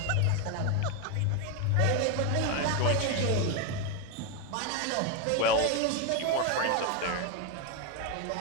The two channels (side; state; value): both; different; correlation 0.01